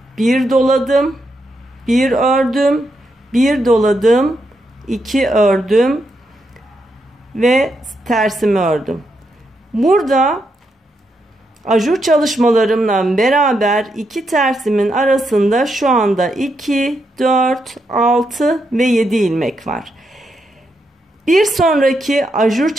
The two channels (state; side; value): normal; both; correlation 0.81